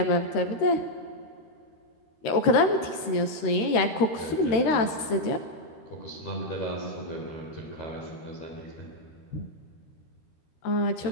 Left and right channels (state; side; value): late; right; 13 ms